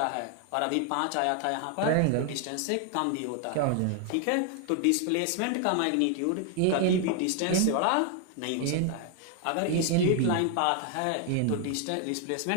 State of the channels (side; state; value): both; different; correlation 0.00